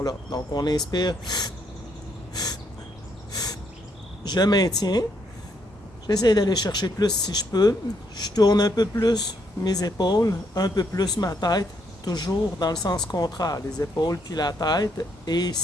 Donc on inspire, je maintiens, j'essaie d'aller chercher plus si je peux, je tourne un peu plus mes épaules, un peu plus ma tête, toujours dans le sens contraire, les épaules puis la tête. Et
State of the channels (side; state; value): both; normal; correlation 0.74